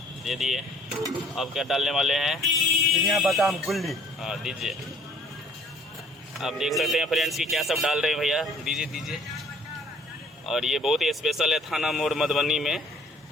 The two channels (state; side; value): normal; both; correlation 0.55